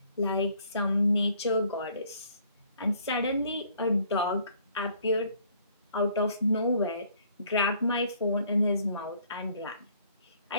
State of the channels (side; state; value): both; inverted; correlation -0.61